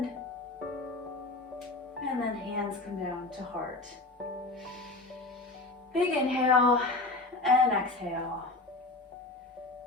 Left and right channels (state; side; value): quieter; right; 3.1 dB